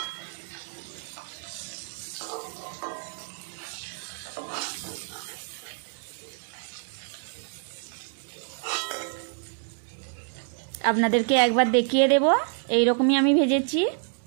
আপনাদেরকে একবার দেখিয়ে দেব, এই রকমই আমি ভেজেছি।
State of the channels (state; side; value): silent; left; 60 dB below the other